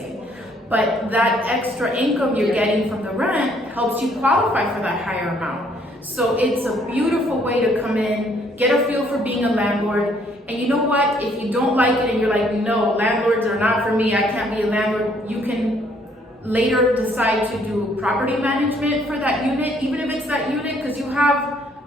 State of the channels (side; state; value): both; normal; correlation 0.65